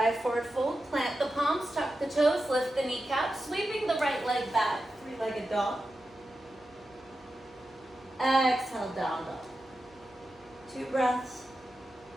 forward fold. Plant the palms, tuck the toes, lift the kneecaps, sweeping the right leg back, three-legged dog. Exhale, down dog. 2 breaths.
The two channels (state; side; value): noise; right; hum, 30 dB below the sound